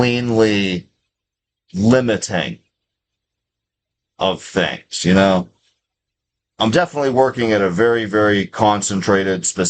limiting of things, you know? I'm definitely working at a very, very concentrated,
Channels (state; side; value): identical; both; correlation 1.00